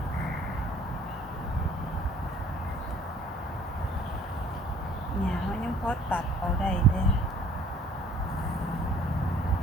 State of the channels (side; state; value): both; normal; correlation 0.56